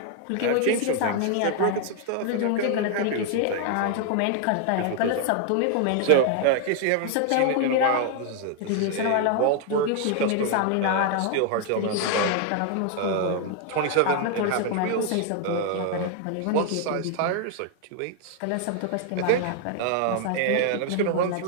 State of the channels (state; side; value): different; both; correlation 0.00